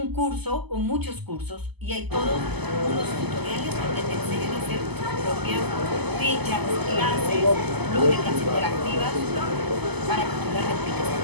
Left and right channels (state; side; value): late; left; 0.99 ms